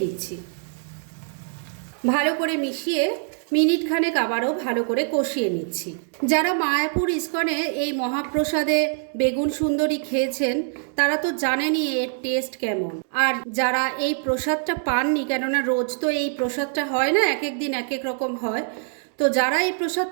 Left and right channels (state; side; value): silent; left; 63 dB below the other